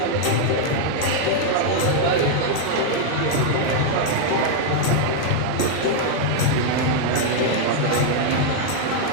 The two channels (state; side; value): different; both; correlation 0.00